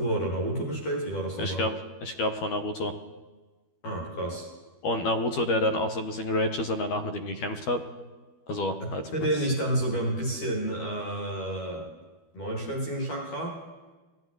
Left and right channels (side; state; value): right; late; 12 ms